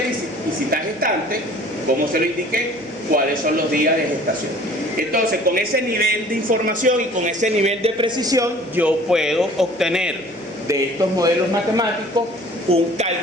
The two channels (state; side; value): noise; right; hum, 30 dB below the sound